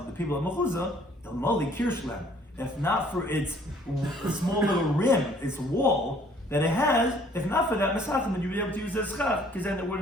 the people of mechuzah, the moli kirshlam. If not for its small little rim, its wall that it has, if not for that mesachim, then you'd be able to use it as schach, because then it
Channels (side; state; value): both; normal; correlation 0.59